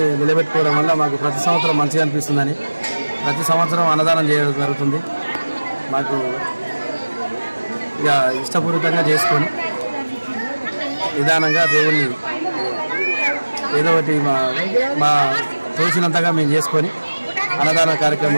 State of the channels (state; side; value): inverted; both; correlation -1.00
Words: నిలబెట్టుకోవడం వల్ల మాకు ప్రతి సంవత్సరం మంచిగా అనిపిస్తుందని ప్రతి సంవత్సరం అన్నదానం చేయడం జరుగుతుంది. మాకు ఇక ఇష్టపూర్వకంగా చేసుకొని నిదానంగా దేవుణ్ణి ఏదో ఒకటి మా తోచినంతగా మేము చేసుకొని అన్నదాన